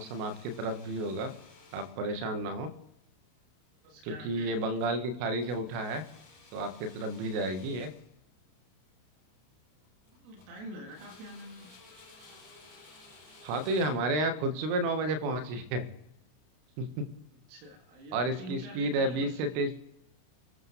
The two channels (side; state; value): left; late; 32 ms